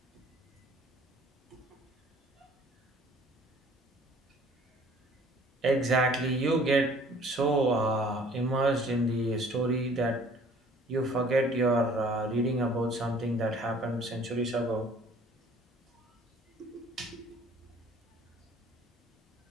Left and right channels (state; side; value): normal; both; correlation 0.54